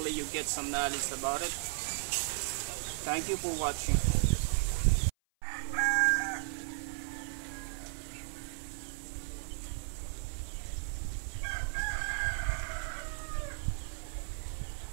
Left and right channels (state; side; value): silent; left; 54 dB below the other